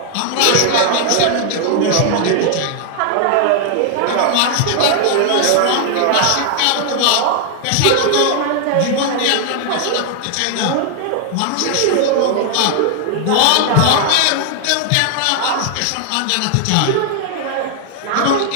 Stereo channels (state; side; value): different; both; correlation 0.00